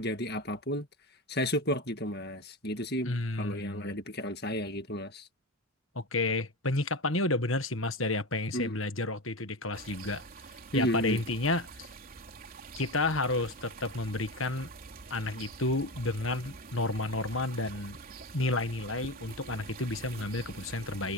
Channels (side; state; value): both; normal; correlation 0.22